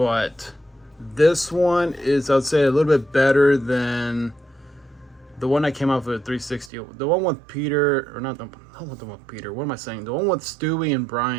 this one is, I'd say, a little bit better than the one I came out with 360. The one with Peter, or not the one with Peter. What am I saying? The one with Stewie and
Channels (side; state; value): left; drops out; at 6.7 s